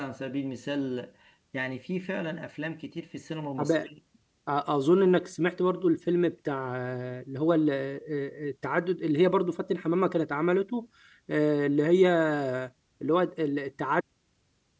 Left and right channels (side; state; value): both; identical; correlation 1.00